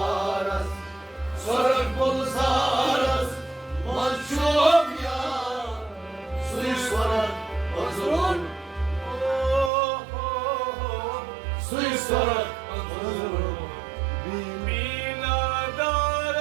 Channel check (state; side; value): drops out; left; at 9.7 s